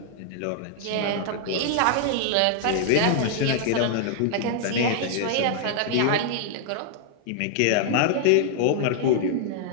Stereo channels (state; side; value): different; both; correlation -0.01